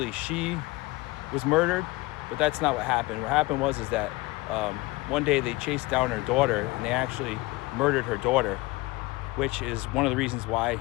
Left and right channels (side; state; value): right; quieter; 21.9 dB